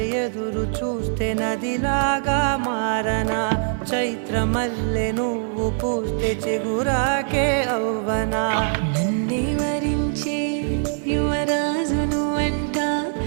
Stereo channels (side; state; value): left; silent; 58 dB below the other